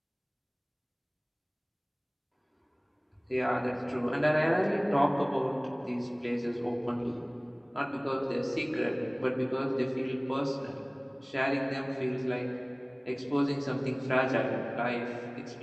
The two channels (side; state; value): both; identical; correlation 1.00